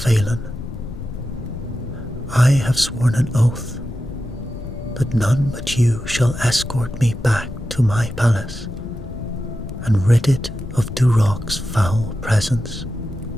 I have sworn an oath that none but you shall escort me back to my palace and rid it of Dwarf's foul presence."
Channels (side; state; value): left; noise; rumble, 11 dB below the sound